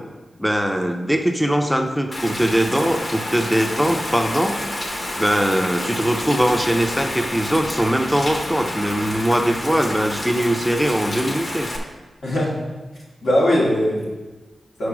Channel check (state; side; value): normal; both; correlation 0.95